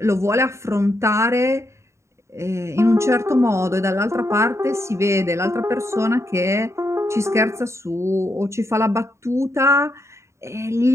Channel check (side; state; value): left; late; 0.14 ms